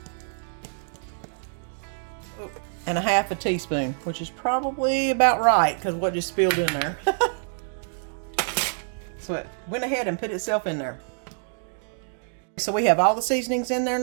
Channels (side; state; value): left; silent; digital silence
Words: and a half a teaspoon, which is probably about right because what just spilled in there. So it went ahead and put itself in there. So we have all the seasonings in there